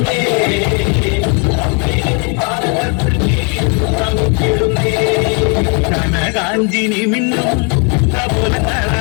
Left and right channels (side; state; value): right; quieter; 36.0 dB